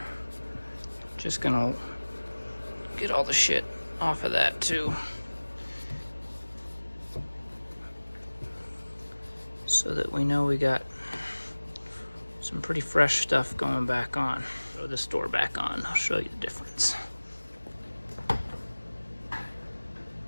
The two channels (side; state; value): both; inverted; correlation -1.00